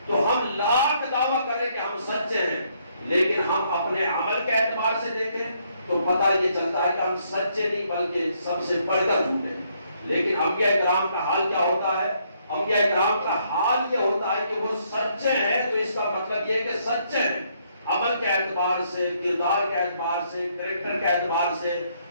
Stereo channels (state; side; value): inverted; both; correlation -0.71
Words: تو ہم لاکھ دعویٰ کریں کہ ہم سچے ہیں، لیکن ہم اپنے عمل کے اعتبار سے دیکھیں تو پتہ یہ چلتا ہے کہ ہم سچے نہیں بلکہ سب سے بڑھ کر جھوٹے ہیں۔ لیکن انبیاء کرام کا حال کیا ہوتا ہے؟ انبیاء کرام کا حال یہ ہوتا ہے کہ وہ سچے ہیں، تو اس کا مطلب یہ کہ سچے ہیں عمل کے اعتبار سے، کردار کے اعتبار سے، کریکٹر کے اعتبار سے،